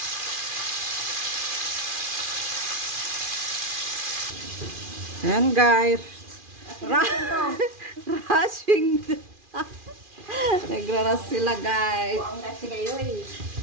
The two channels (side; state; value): left; late; 2.4 ms